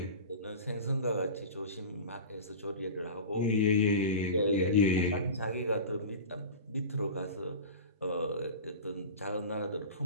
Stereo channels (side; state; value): both; inverted; correlation -0.32